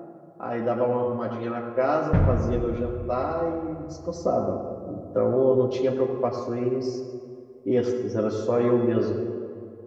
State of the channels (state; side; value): identical; both; correlation 1.00